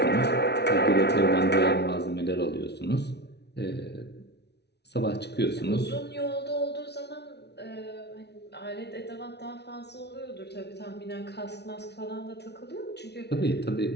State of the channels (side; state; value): right; late; 0.49 ms